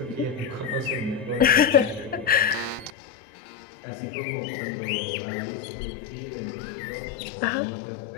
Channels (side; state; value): right; drops out; at 2.9 s